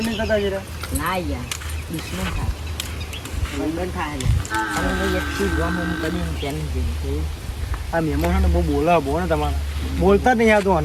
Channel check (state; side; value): identical; both; correlation 1.00